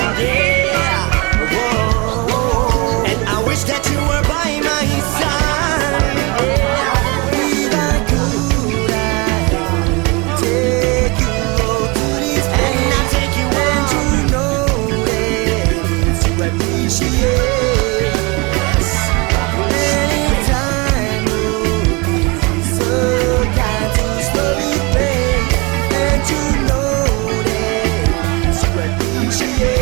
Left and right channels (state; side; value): quieter; left; 27.9 dB